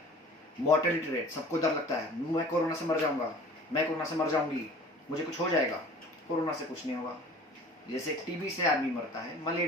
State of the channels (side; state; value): both; normal; correlation 0.45